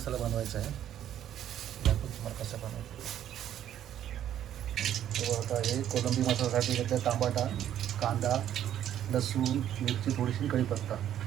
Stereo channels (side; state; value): left; quieter; 10.9 dB